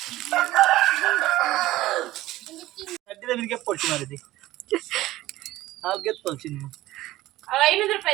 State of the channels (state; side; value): quieter; left; 16.4 dB